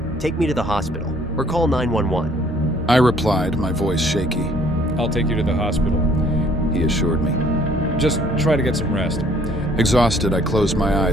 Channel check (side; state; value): both; normal; correlation 0.60